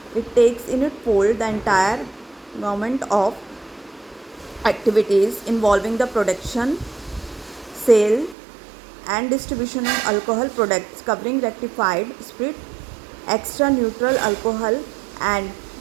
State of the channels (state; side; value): drops out; left; at 8.3 s